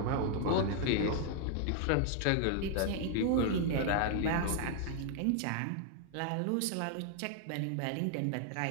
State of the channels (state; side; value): different; both; correlation 0.00